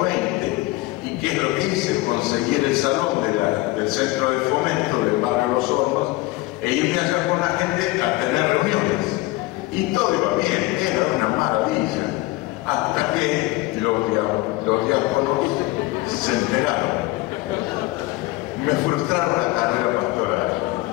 ¿Y qué es lo que hice? Conseguir el salón del Centro de Fomento del barrio Los Hornos e irme allá con la gente a tener reuniones. Y todo iba bien, era una maravilla. Hasta que los diáconos se enteraron. Me frustraron la carrera pastoral.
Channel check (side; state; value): right; quieter; 19.5 dB